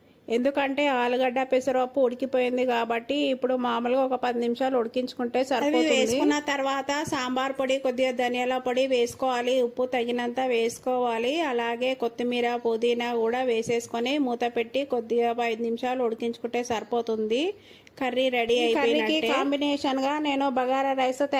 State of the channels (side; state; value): both; identical; correlation 1.00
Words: ఎందుకంటే ఆలుగడ్డ పెసరపప్పు ఉడికిపోయింది కాబట్టి ఇప్పుడు మామూలుగా ఒక 10 నిమిషాలు ఉడికించుకుంటే సరిపోతుంది. వేసుకున్న తర్వాత సాంబార్ పొడి, కొద్దిగా ధనియాల పొడి వేసుకోవాలి. ఉప్పు తగినంత వేసుకోవాలి. అలాగే కొత్తిమీర, పుదీనా కూడా వేసేసుకొని మూత పెట్టి కొద్దిగా 5 నిమిషాలు ఉడికించుకుంటే సరిపోతుంది. కర్రీ రెడీ అయిపోయినట్టే. కాంబినేషన్ గా నేను బగారా రైస్